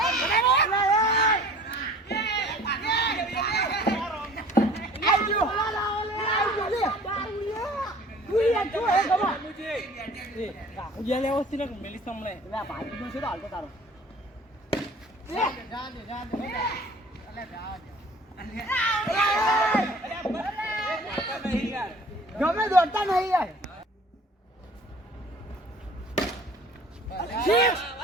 ગમે દોડતા નહીં યાર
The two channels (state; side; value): normal; both; correlation 0.48